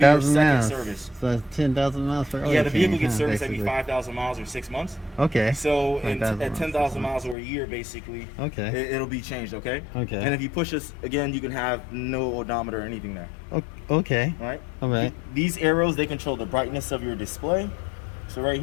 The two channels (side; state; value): right; drops out; at 7.4 s